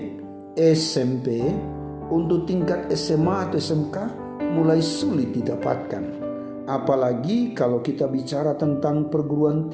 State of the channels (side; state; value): both; identical; correlation 1.00